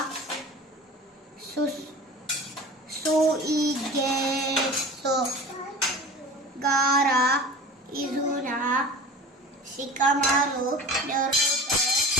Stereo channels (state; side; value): normal; both; correlation 0.38